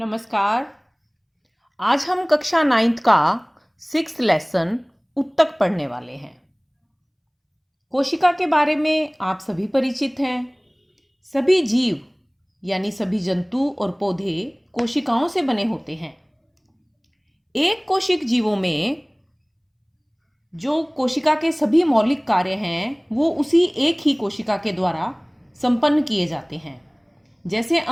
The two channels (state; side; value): identical; both; correlation 1.00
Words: आज हम कक्षा 9th का 6th लेसन उत्तक पढ़ने वाले हैं। कोशिका के बारे में आप सभी परिचित हैं। सभी जीव यानी सभी जंतु और पौधे कोशिकाओं से बने होते हैं। एक कोशिक जीवों में जो कोशिका के सभी मौलिक कार्य हैं वो उसी एक ही कोशिका के द्वारा संपन्न किए जाते हैं। जैसे